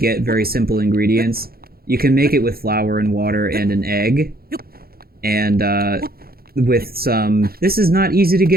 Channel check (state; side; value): late; left; 0.44 ms